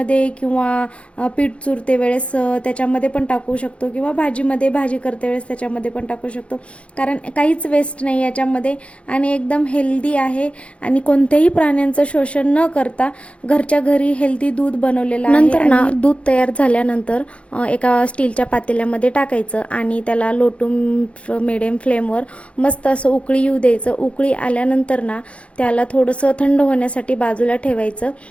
किंवा पीठ चुरते वेळेस त्याच्यामध्ये पण टाकू शकतो किंवा भाजी करते वेळेस त्याच्यामध्ये पण टाकू शकतो, कारण काहीच वेस्ट नाही याच्यामध्ये आणि एकदम हेल्दी आहे आणि कोणत्याही प्राण्यांचं शोषण न करता घरच्या घरी हेल्दी दूध बनवलेलं आहे. नंतर ना दूध तयार झाल्यानंतर एका स्टीलच्या पातेल्यामध्ये टाकायचं आणि त्याला लो टू मिडियम फ्लेमवर मस्त असं उकळी येऊ द्यायचं. उकळी आल्यानंतर ना त्याला थोडंसं थंड होण्यासाठी बाजूला ठेवायचं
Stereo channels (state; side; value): late; right; 0.061 ms